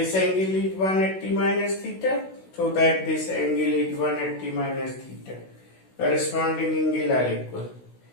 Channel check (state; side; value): late; right; 16 ms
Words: angle is 180 minus theta, so that this angle is 180 minus theta. Corresponding angle are equal.